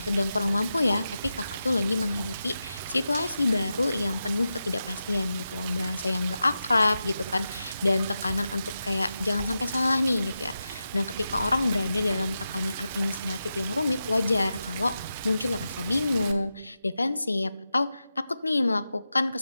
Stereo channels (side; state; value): both; inverted; correlation -0.91